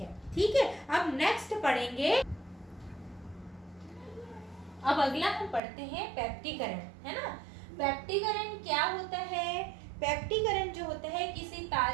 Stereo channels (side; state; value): left; drops out; at 5.6 s